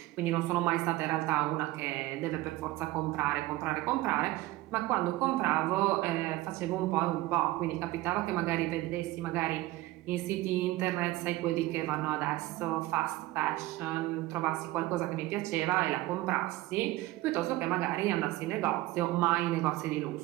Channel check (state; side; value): quieter; left; 17.9 dB